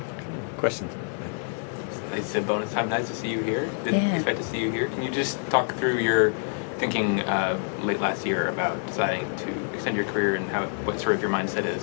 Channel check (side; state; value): right; silent; 60 dB below the other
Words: Questions? It's a bonus time. Nice to see you here. Didn't Yeah. expect to see you here. Can you just talk through your thinking late last year about deciding to extend your career and what sort of your mindset